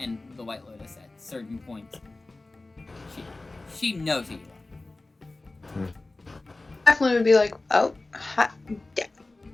the White Lotus at certain points. She knows who you are. Definitely would be like, oh, yeah,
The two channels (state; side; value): quieter; right; 3.1 dB